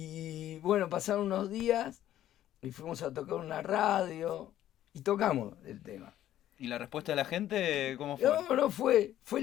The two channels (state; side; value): quieter; right; 12.4 dB